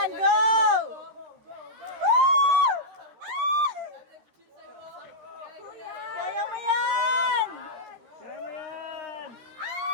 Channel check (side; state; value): left; late; 13 ms